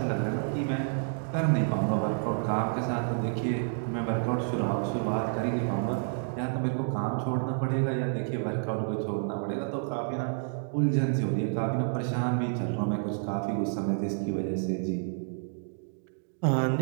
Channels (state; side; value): silent; left; digital silence